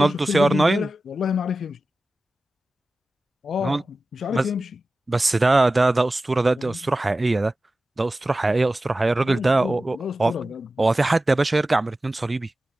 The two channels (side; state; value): both; normal; correlation 0.95